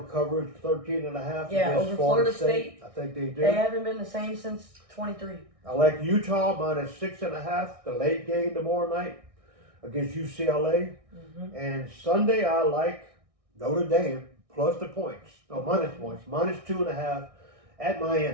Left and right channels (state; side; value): late; left; 1.6 ms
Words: covers 13.5 against over Florida State. I think they do. They haven't been the same since 23. I like Utah -6.5, the late game tomorrow night against UCLA. And Sunday I like Notre Dame plus the points. No, minus points. -2.5 at